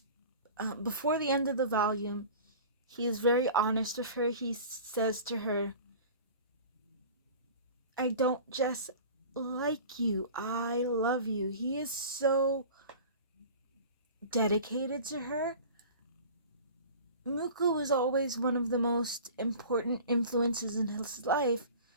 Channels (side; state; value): both; inverted; correlation -0.39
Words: before the end of the volume, he is very honest with her. He says to her, I don't just like you, I love you. He is so dedicated to her. Muku was always one of the most important influences in his life